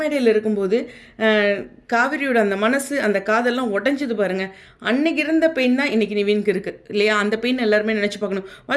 இருக்கும்போது காவிரியோட அந்த மனசு, அந்த காதெல்லாம் உடஞ்சது பாருங்கள். அன்னைக்கு இருந்த பெயின் தான் இன்றைக்கி நிவினுக்கு இருக்குது இல்லையா? அந்த பெயின் எல்லாருமே நினச்சி பார்க்கணும்.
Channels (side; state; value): both; identical; correlation 1.00